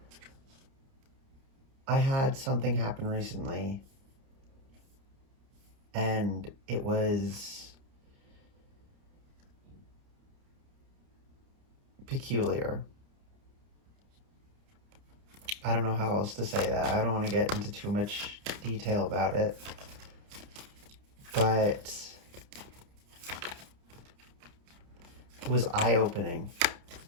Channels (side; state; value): left; late; 30 ms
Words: I had something happen recently, and it was peculiar. I don't know how else to say that. I don't want to get into too much detail about it, but it was eye-opening.